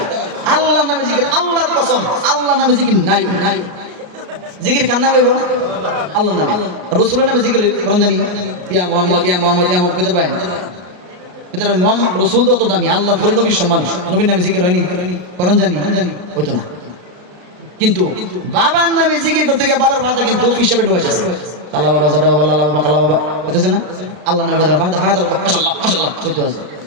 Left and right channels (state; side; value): late; left; 34 ms